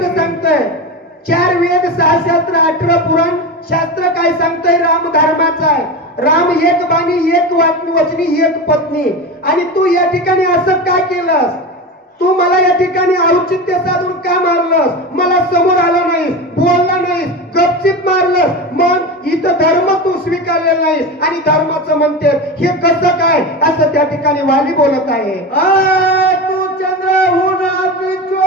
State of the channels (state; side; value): normal; both; correlation 0.23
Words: सांगतंय 4 वेद 6 शास्त्र 18 पुराण शास्त्र काय सांगतंय? राम धर्माचा आहे. राम एक बाणी एक वचनी एक पत्नी. आणि तू या ठिकाणी असं का केलंस? तू मला या ठिकाणी औचित्य साधून का मारलंस? मला समोर आला नाहीस, बोलला नाहीस, गपचिप मारलंस. मग इथं धर्म तू स्वीकारलेला नाहीस आणि धर्माचं म्हणते हे कसं काय असं त्या ठिकाणी वाली बोलत आहे. तू चंद्रहून अति